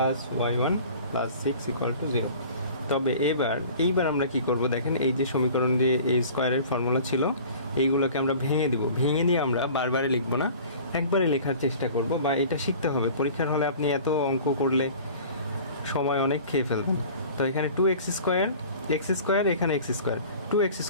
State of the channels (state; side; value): inverted; both; correlation -0.44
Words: y1 plus 6 equal to 0। তবে এইবার আমরা কি করব, দেখেন এই যে সমীকরণ যে এই স্কোয়ারের ফর্মুলা ছিল, এইগুলোকে আমরা ভেঙে দিব। ভেঙে নিয়ে আমরা বারবারে লিখবো না, একবারে লেখার চেষ্টা করব, বা এটা শিখতে হবে। পরীক্ষার হলে আপনি এত অঙ্ক করলে সময় অনেক খেয়ে ফেলবেন। তো এখানে 2x স্কোয়ার, এখানে x স্কোয়ার, 2x